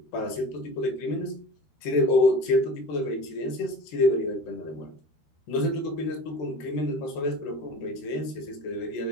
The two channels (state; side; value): late; right; 13 ms